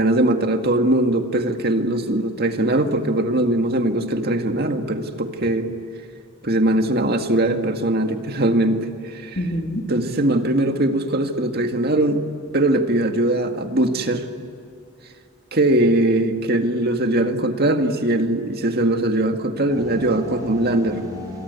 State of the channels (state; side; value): normal; both; correlation 0.36